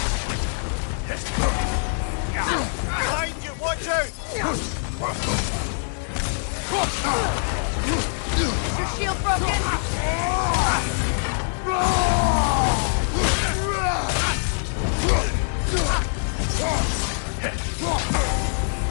Behind you, watch out! Is your shield broken?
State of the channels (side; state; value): right; silent; digital silence